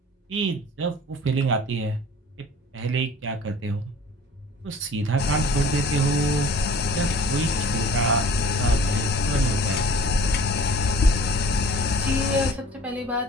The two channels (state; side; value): normal; both; correlation 0.47